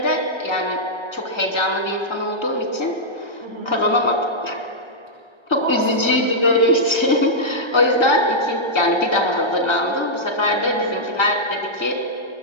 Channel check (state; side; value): late; right; 1.3 ms